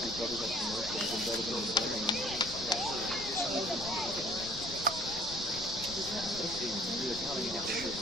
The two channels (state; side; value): noise; left; rumble, 14 dB below the sound